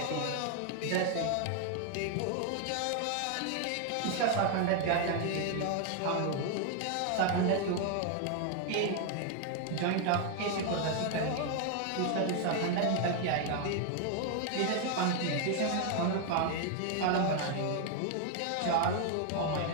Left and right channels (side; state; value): both; different; correlation 0.00